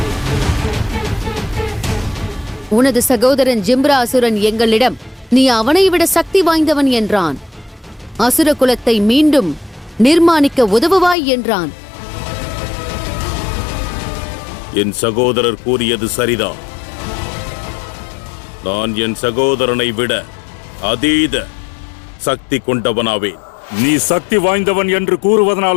உனது சகோதரன் ஜிம்ரா அசுரன் எங்களிடம் நீ அவனை விட சக்தி வாய்ந்தவன் என்றான். அசுர குலத்தை மீண்டும் நிர்மாணிக்க உதவுவாய் என்றான். என் சகோதரர் கூறியது சரிதான். நான் என் சகோதரனை விட அதீத சக்தி கொண்டவனாவேன். நீ சக்தி வாய்ந்தவன் என்று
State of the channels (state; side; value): drops out; right; at 11.2 s